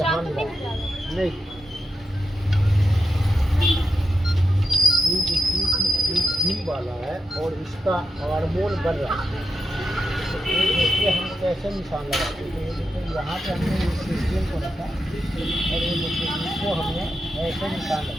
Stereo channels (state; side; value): normal; both; correlation 0.86